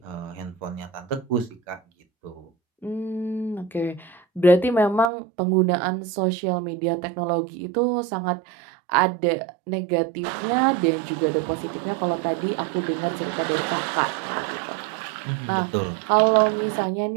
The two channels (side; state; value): left; drops out; at 5.1 s